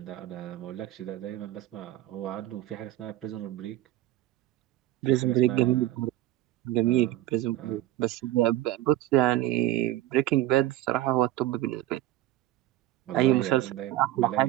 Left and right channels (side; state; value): left; quieter; 15.0 dB